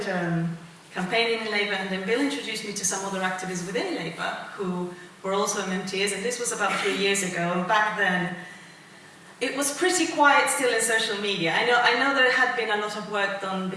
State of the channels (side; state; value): both; identical; correlation 1.00